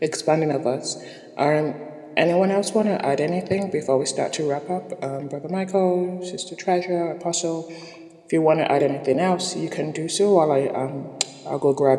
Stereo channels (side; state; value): both; identical; correlation 1.00